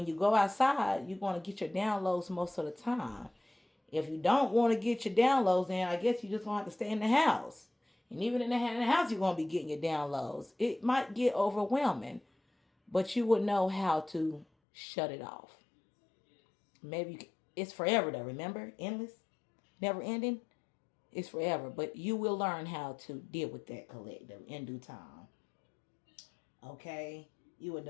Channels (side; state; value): right; drops out; at 14.5 s